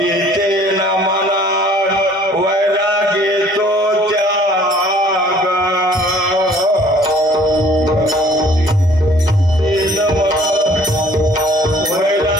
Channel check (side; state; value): both; normal; correlation 0.55